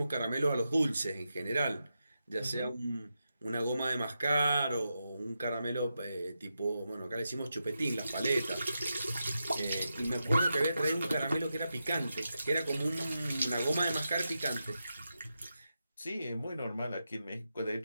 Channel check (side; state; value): both; inverted; correlation -0.88